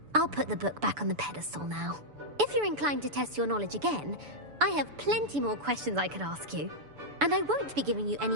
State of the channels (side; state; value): left; late; 6.9 ms